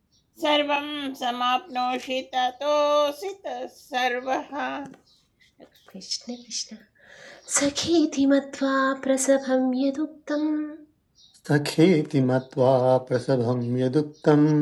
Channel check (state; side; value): identical; both; correlation 1.00